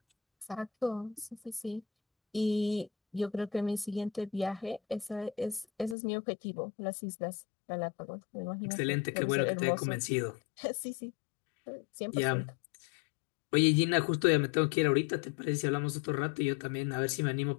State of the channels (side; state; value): right; drops out; at 6.0 s